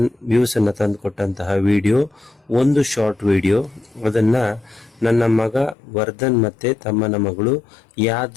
ವ್ಯೂಸನ್ನು ತಂದು ಕೊಟ್ಟಂತಹ ವಿಡಿಯೋ ಒಂದು ಶಾರ್ಟ್ ವಿಡಿಯೋ. ಅದನ್ನು ನನ್ನ ಮಗ ವರ್ಧನ್ ಮತ್ತು ತಮ್ಮನ ಮಗಳು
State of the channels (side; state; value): right; drops out; at 5.8 s